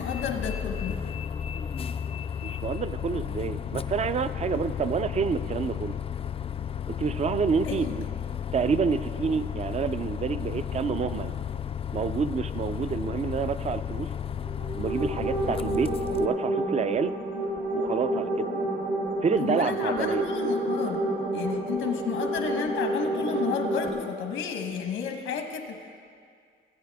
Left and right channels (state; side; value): normal; both; correlation 0.53